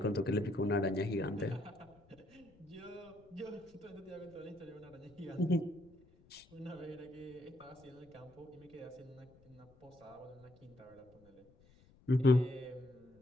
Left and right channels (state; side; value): noise; left; rumble, 27 dB below the sound